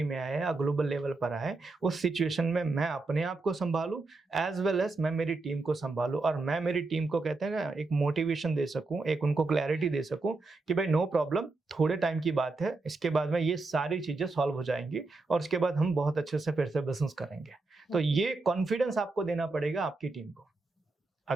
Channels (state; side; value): quieter; left; 3.5 dB